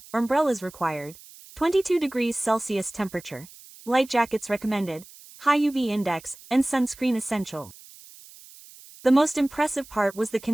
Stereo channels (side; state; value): right; noise; hiss, 21 dB below the sound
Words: umbrellas required, 22 degrees Celsius temperature, light jackets recommended, high UV index, and sunscreen essential. The most impressive part was the